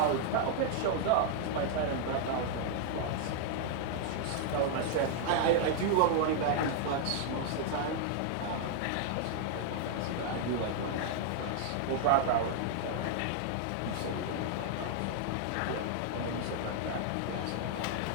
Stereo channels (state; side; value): different; both; correlation -0.01